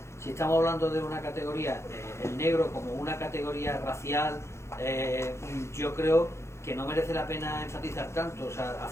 si estamos hablando de una categoría, el negro como una categoría racial, yo creo que no merece la pena enfatizar tanto. O sea,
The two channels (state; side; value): late; right; 0.13 ms